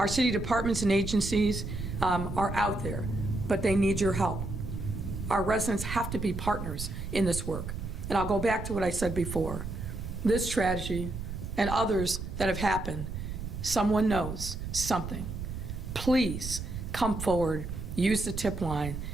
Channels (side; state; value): right; noise; rumble, 6 dB below the sound